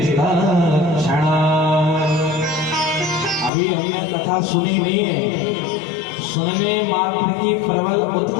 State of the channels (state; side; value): drops out; right; at 3.5 s